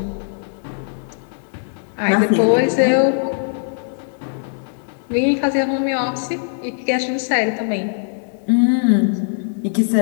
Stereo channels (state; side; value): silent; right; 66 dB below the other